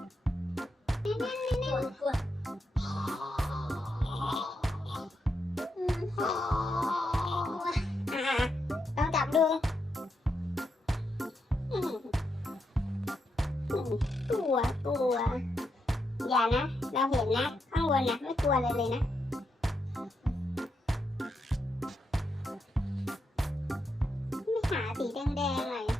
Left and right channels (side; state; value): both; normal; correlation 0.83